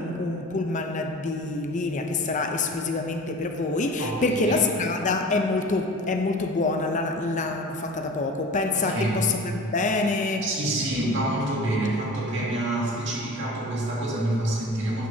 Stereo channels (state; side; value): normal; both; correlation 0.39